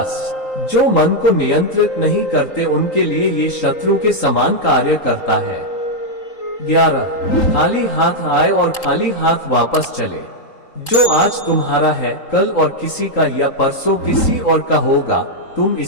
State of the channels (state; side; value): late; right; 3.8 ms